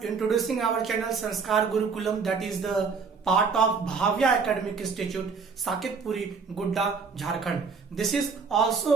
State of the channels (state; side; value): quieter; left; 5.2 dB